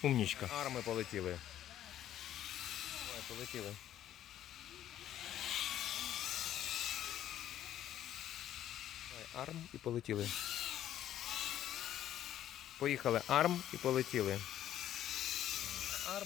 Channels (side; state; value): right; quieter; 11.7 dB